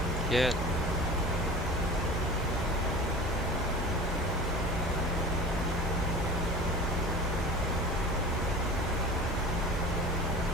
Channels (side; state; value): both; normal; correlation 0.37